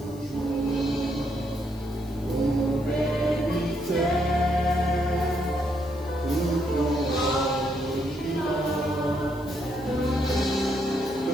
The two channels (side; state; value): left; noise; hiss, 24 dB below the sound